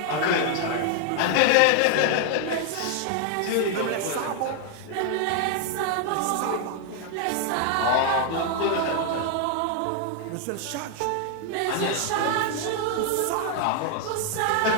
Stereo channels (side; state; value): both; different; correlation 0.00